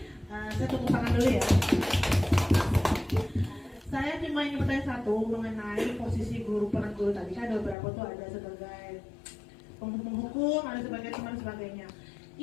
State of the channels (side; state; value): right; drops out; at 7.8 s